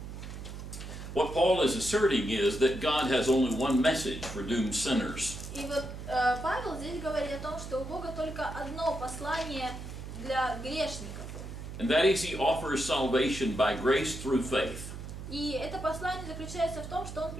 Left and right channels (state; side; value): noise; right; hum, 9 dB below the sound